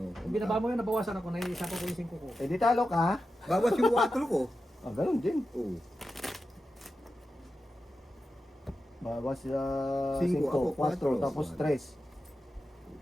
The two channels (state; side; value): normal; both; correlation 0.91